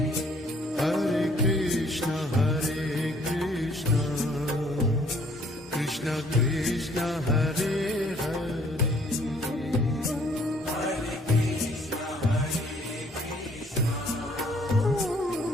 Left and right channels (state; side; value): normal; both; correlation 0.61